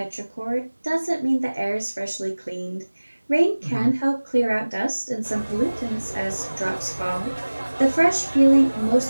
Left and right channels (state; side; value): inverted; both; correlation -1.00